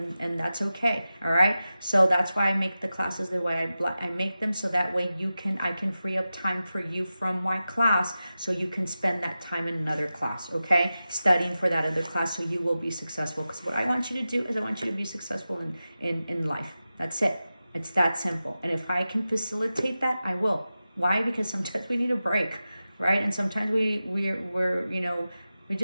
and that's okay, all right? So that's why I make the classes the way I make them, so that way I can free up time for you from my class, so you can spend that time in another class, okay? Studying for that other class, so you will be successful. Because what I want you to do is I want you to be successful in life. That's it. It's that simple. And if I can facilitate that, I will. Why? Because sometimes we need a break, right? And sometimes we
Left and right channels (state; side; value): inverted; both; correlation -0.93